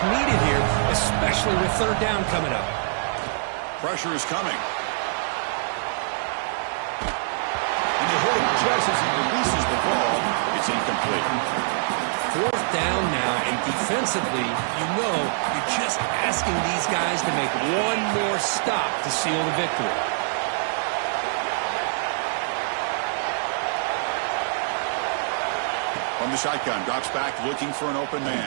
needed here, especially with third down coming up. Pressure is coming. And they hit him just as he releases the ball. It's incomplete. Fourth down now, and defensively, you're just asking these guys to make one more stop to seal the victory. From the shotgun, drops back looking for an open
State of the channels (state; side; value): silent; left; digital silence